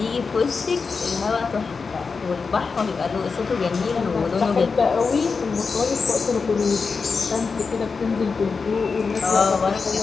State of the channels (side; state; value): right; quieter; 4.9 dB